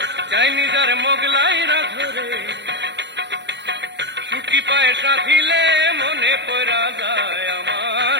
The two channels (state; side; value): late; left; 0.51 ms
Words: চাইনিজ আর মোগলাই রাধো রে। শুটকি পায়েস রাধিলে মনে পড়া যায় আমার,